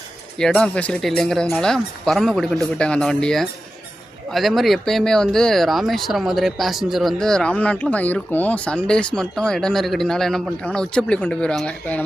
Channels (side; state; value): both; normal; correlation 0.93